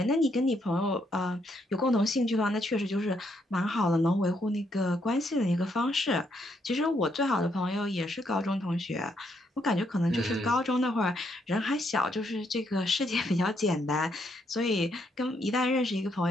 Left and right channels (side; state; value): both; normal; correlation 0.75